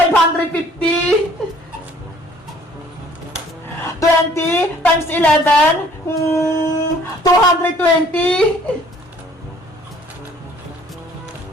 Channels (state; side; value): normal; both; correlation 0.57